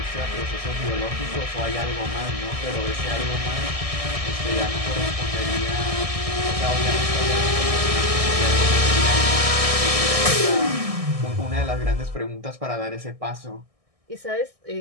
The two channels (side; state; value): left; late; 1.6 ms